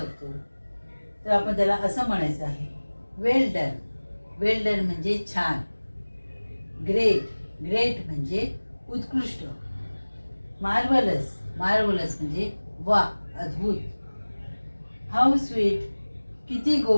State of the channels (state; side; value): inverted; both; correlation -1.00